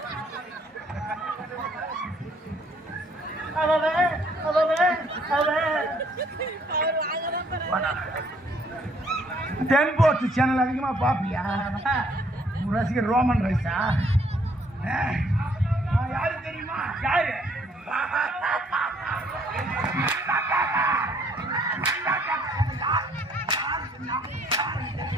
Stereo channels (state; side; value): normal; both; correlation 0.65